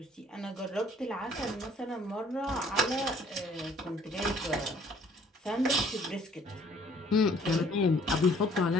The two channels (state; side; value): normal; both; correlation 0.58